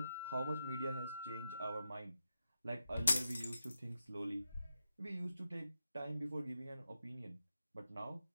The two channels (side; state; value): both; inverted; correlation -0.87